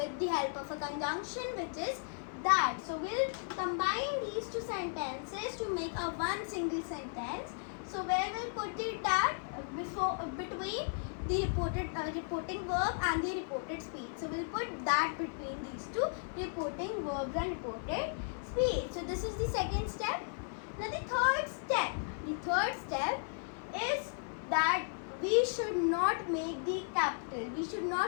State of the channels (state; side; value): silent; right; 54 dB below the other